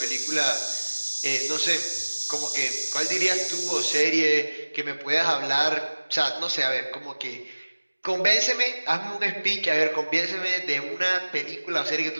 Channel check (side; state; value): both; inverted; correlation -1.00